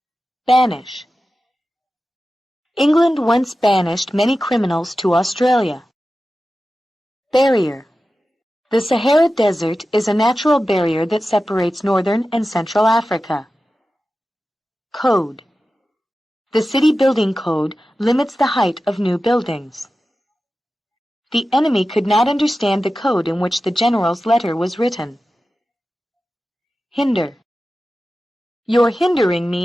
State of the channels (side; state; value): both; normal; correlation 0.94